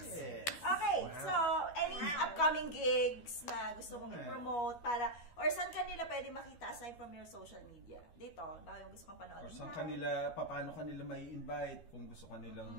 Yes. Okay, Wow. so any upcoming gigs na gusto mong i-promote para, or saan kanila pwede makita aside from your social media? Dito, baka yung gusto kong panood. Or saan paano kanila may invite kung gusto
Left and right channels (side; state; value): right; late; 12 ms